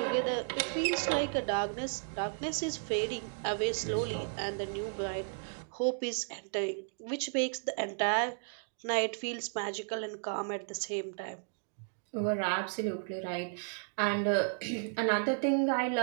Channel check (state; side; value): silent; left; digital silence